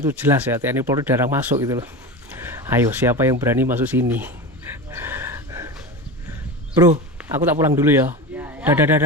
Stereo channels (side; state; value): both; normal; correlation 0.26